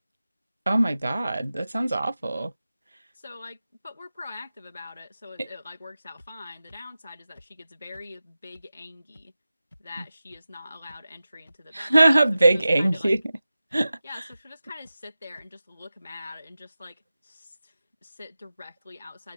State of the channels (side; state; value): both; inverted; correlation -0.94